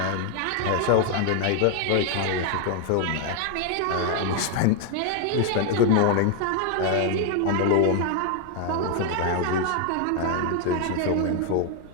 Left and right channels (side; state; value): both; different; correlation 0.01